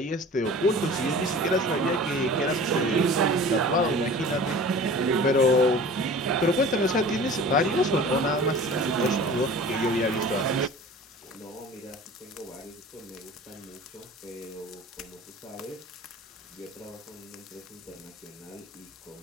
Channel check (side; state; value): both; normal; correlation 0.41